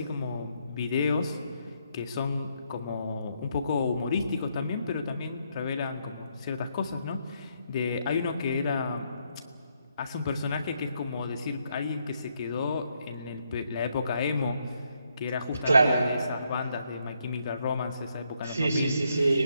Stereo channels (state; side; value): inverted; both; correlation -0.76